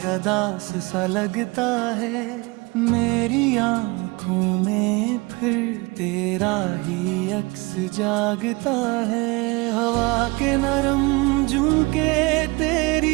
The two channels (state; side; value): quieter; left; 25.4 dB